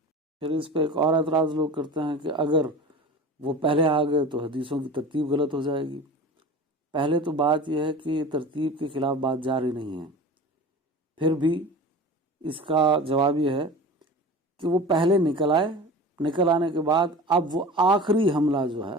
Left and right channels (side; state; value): both; normal; correlation 0.35